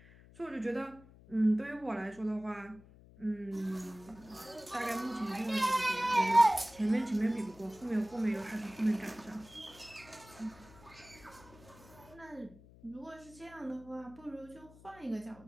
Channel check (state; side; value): noise; left; hum, 22 dB below the sound